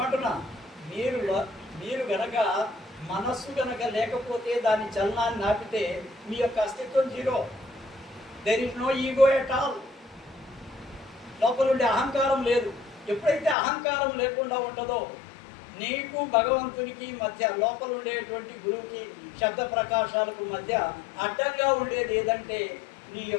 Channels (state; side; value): drops out; right; at 13.6 s